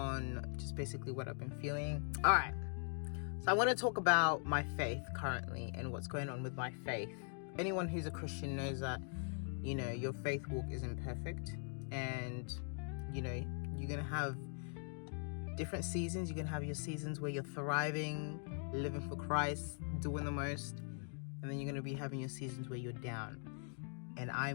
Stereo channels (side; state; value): right; silent; 50 dB below the other